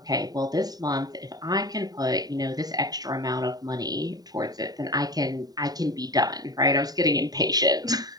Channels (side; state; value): left; late; 0.18 ms